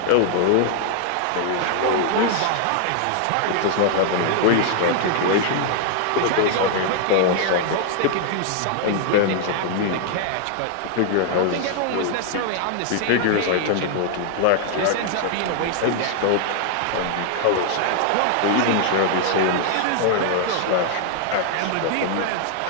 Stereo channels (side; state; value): both; different; correlation 0.00